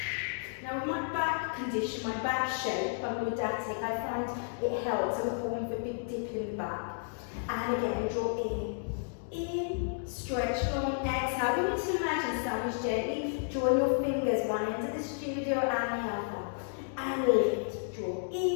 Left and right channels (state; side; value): silent; right; digital silence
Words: Now with my back condition, my back shape, I'm lordotic, I find it helps. I'm falling for a big dip in the back. And again, draw in, stretch long, exhale. You need to imagine sandwich gently, drawing your fingers one end of the studio and the other. And lift, draw